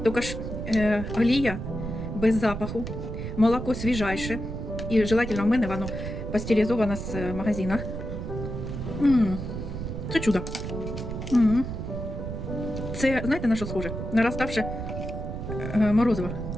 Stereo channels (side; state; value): right; noise; rumble, 6 dB below the sound